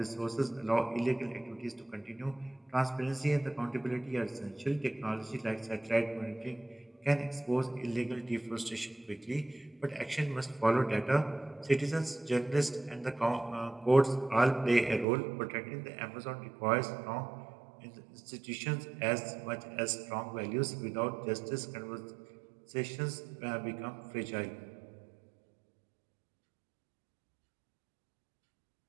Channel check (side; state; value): left; drops out; at 15.1 s